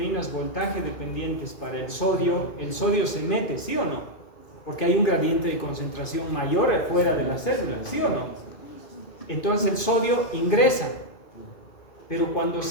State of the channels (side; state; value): right; late; 2.5 ms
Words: voltaje dependientes para el sodio se mete, ¿sí o no? Porque hay un gradiente de concentración mayor fuera de la célula, ¿sí o no? Entonces el sodio ingresa. Pero cuando